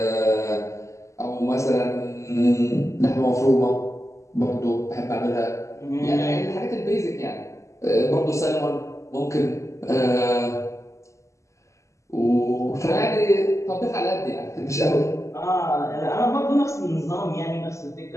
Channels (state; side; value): late; right; 0.15 ms